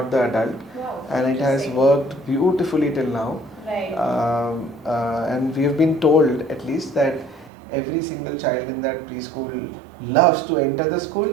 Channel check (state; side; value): drops out; left; at 7.5 s